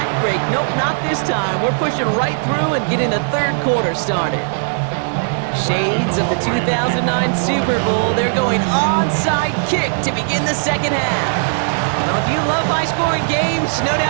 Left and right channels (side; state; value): left; silent; 68 dB below the other